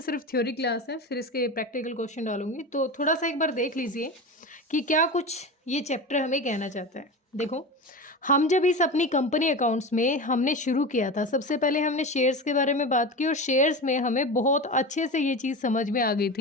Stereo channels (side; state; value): both; normal; correlation 0.26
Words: सिर्फ थ्योरी क्लास है, फिर इसके प्रैक्टिकल क्वेश्चन डालूंगी। तो थोड़ा सा एक बार देख लीजिए कि क्या कुछ ये चैप्टर हमें कहना चाहता है। देखो, हम जब इस अपनी कंपनी अकाउंट्स में हमने शुरू किया था, सबसे पहले हमने शेयर्स के बारे में बात की और शेयर्स में हमें बहुत अच्छे से ये चीज़ समझ में आ गई